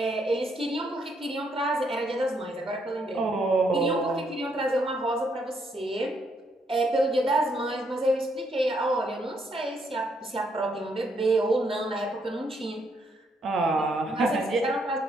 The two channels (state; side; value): normal; both; correlation 0.74